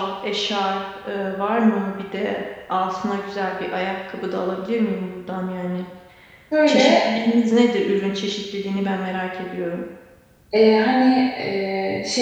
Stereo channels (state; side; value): identical; both; correlation 1.00